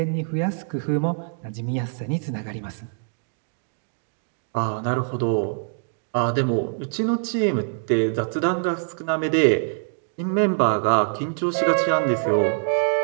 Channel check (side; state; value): left; silent; digital silence